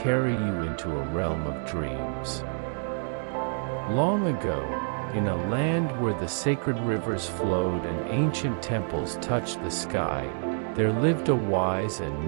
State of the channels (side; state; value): left; silent; 60 dB below the other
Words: you into a realm of dreams. Long ago, in a land where the sacred rivers flowed and ancient temples touched the sky, there lived a wise and